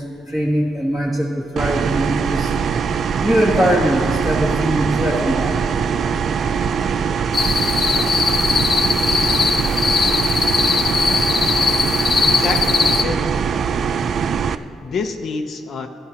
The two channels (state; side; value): normal; both; correlation 0.76